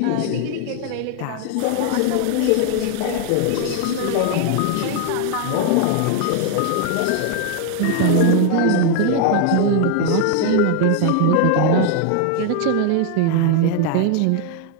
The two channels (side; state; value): both; different; correlation 0.00